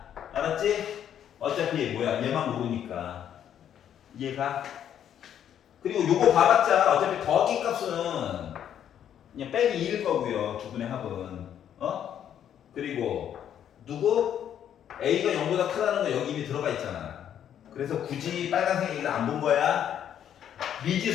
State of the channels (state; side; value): quieter; right; 9.7 dB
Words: 알았지? 어차피 뭐야 얘만 모르니까. 이해가? 그리고 요거 봐봤자 어차피 더하기 값은 그냥 빼기 2일 거고요. 두 분의 합은. 그리고 누구? A가 0보다 크다는 거 여기 이미 들어가 있잖아. 그래서 굳이 빨간색 얘기를 안 본 거야.